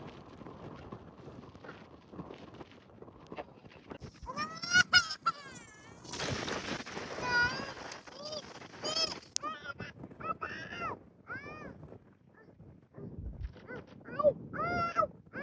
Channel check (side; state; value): both; identical; correlation 1.00